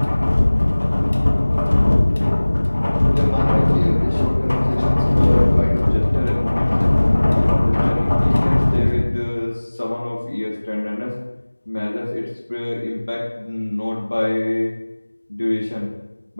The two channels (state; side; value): inverted; both; correlation -1.00